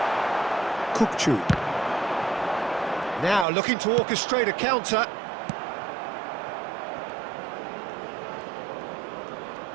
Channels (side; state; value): left; drops out; at 3.5 s